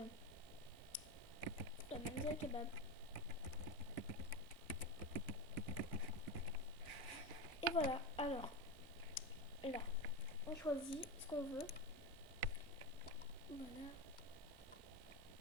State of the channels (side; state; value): both; normal; correlation 0.17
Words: la Manzil Kebab. Et voilà, alors là, on choisit ce qu'on veut. Voilà.